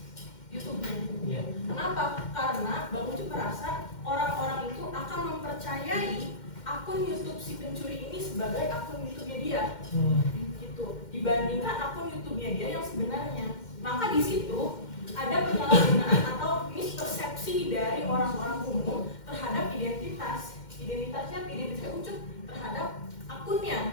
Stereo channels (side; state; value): right; late; 2.1 ms